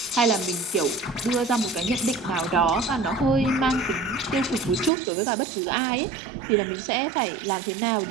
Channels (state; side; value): drops out; left; at 4.9 s